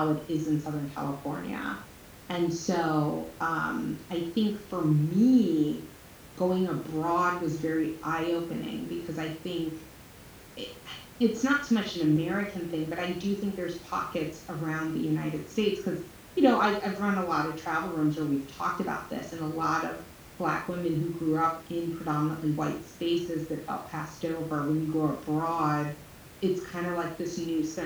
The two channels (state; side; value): identical; both; correlation 1.00